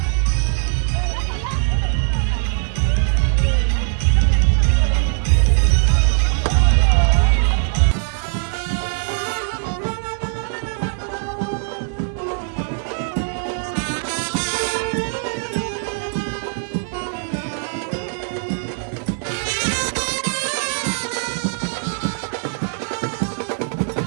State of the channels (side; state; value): left; silent; 60 dB below the other